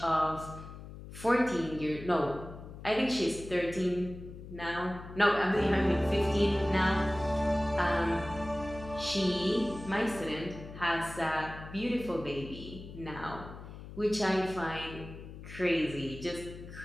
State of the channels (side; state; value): left; noise; hum, 13 dB below the sound